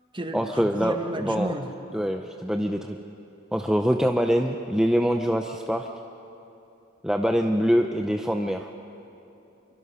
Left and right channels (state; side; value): normal; both; correlation 0.92